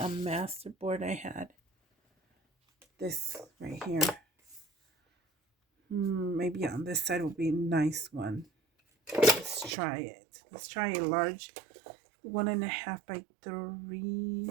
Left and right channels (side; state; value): left; drops out; at 9.8 s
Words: masterboard I had. This right here. Maybe on this side will be a nice one. Let's try it. Let's try a large 1.5 by 3.